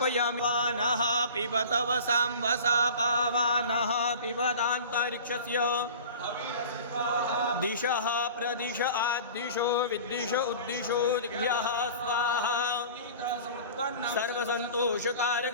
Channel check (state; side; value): inverted; both; correlation -0.39